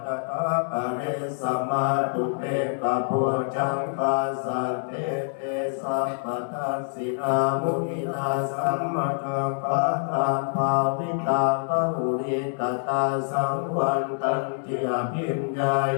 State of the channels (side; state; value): right; silent; digital silence